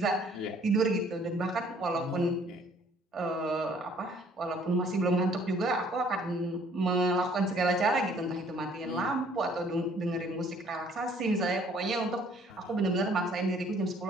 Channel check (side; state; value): both; normal; correlation 0.59